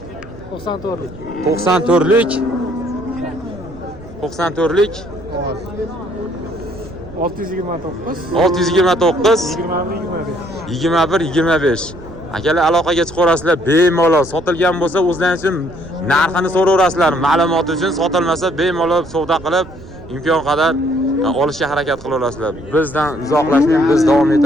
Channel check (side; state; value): right; noise; rumble, 18 dB below the sound